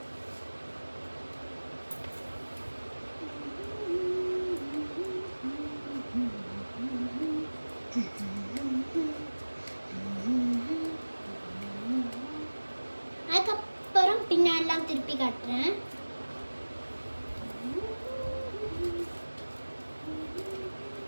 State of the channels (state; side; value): inverted; both; correlation -1.00